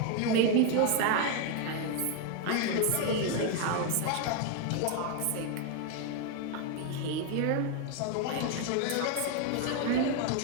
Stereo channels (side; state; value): both; different; correlation 0.01